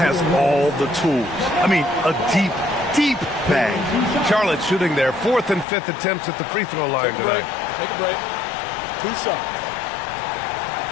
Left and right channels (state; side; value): drops out; right; at 5.7 s